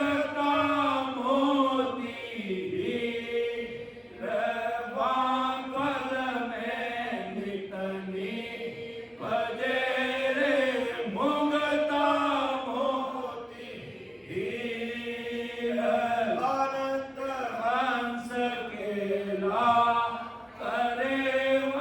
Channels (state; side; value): identical; both; correlation 1.00